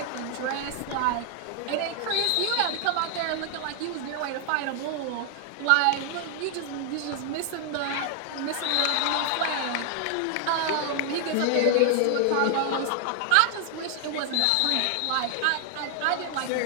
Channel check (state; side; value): different; both; correlation 0.00